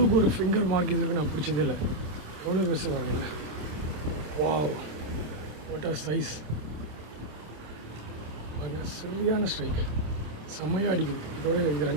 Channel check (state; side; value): late; left; 27 ms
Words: ஒரு ஃபிங்கர் மார்க் இதுக்கு நான் பிடிச்சதே இல்லை. எவ்வளோ பெருசு வாங்க. Wow, what are size. சரியான ஸ்ட்ரைக், செம்மையாக அடிக்குது. இதோட இது